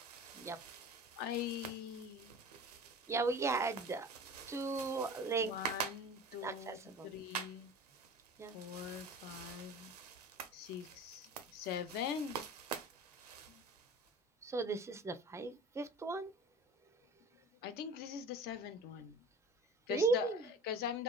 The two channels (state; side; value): normal; both; correlation 0.38